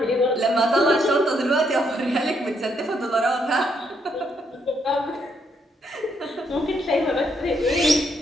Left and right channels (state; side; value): normal; both; correlation 0.74